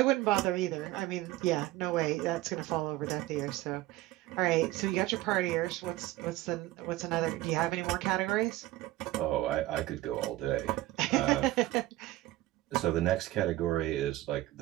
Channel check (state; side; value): quieter; left; 16.8 dB